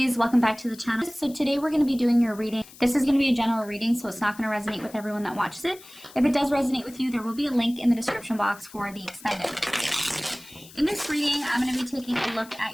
welcome back to the channel. So today we're going to be doing your reading. This is going to be a general reading, so it's not going to resonate with everyone that watches it. If it does resonate with you, there will be a link in the description box for the extended. In this reading, I'm going to be taking a look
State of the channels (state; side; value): noise; left; hiss, 20 dB below the sound